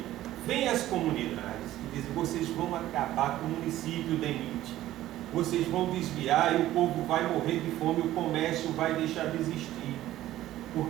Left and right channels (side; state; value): left; quieter; 14.3 dB